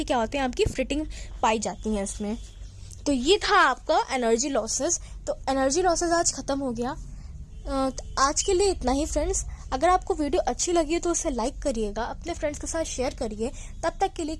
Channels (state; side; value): identical; both; correlation 1.00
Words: क्या होते हैं, आपकी फिटिंग पाई जाती है इसमें। तो ये था आपका एनर्जी लॉसेस। तो एनर्जी लॉसेस आज खत्म हो गया। आज के लिए इतना ही फ्रेंड्स। अगर आपको वीडियो अच्छी लगी है तो उसे लाइक करिएगा, अपने फ्रेंड्स के साथ शेयर करिए। तब तक के लिए